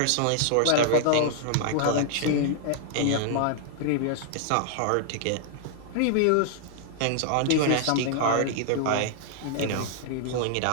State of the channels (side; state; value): both; different; correlation -0.01